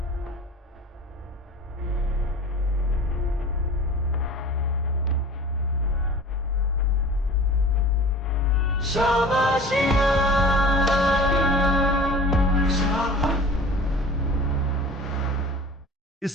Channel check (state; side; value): normal; both; correlation 0.40